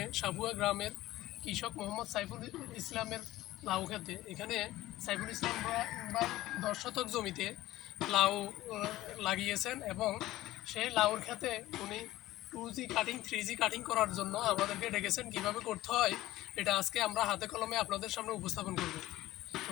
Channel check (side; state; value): right; quieter; 16.2 dB